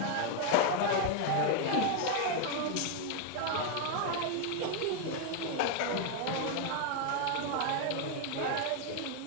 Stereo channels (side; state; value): both; different; correlation 0.01